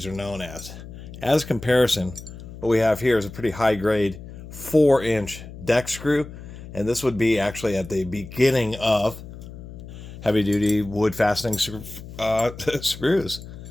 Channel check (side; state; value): left; noise; hum, 14 dB below the sound